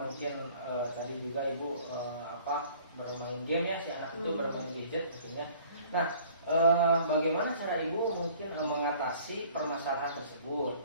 tadi juga Ibu bermain game ya, si anak itu bermain gadget mungkin ya. Nah bagaimana cara Ibu mungkin mengatasi permasalahan tersebut?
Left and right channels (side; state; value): both; inverted; correlation -0.52